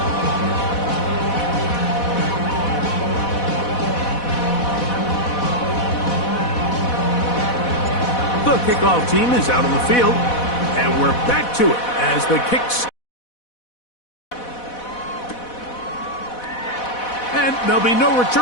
The kickoff team is out on the field, and we're back to it as the kicks. And there'll be no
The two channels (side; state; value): right; late; 4.1 ms